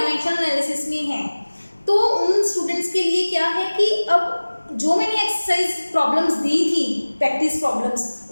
एनालिसिस में है। तो उन स्टूडेंट्स के लिए क्या है कि अब जो मैंने एक्सरसाइज प्रॉब्लम्स दी थी, प्रैक्टिस प्रॉब्लम्स,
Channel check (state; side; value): inverted; both; correlation -1.00